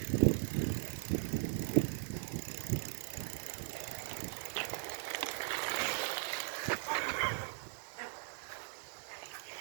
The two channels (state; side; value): silent; left; digital silence